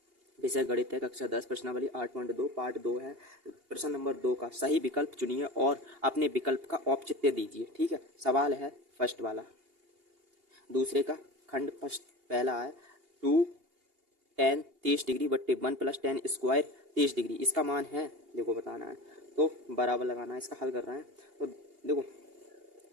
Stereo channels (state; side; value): late; left; 2.8 ms